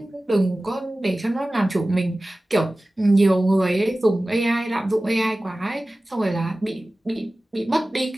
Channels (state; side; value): normal; both; correlation 0.97